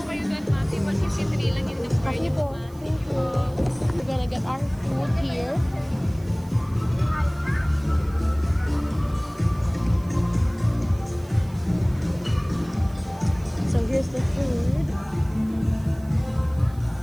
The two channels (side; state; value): right; noise; hiss, 26 dB below the sound